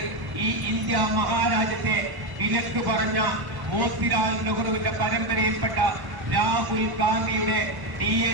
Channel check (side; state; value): left; late; 1.0 ms